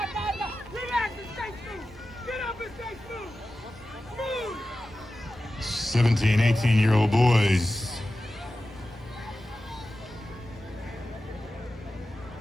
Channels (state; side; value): normal; both; correlation 0.94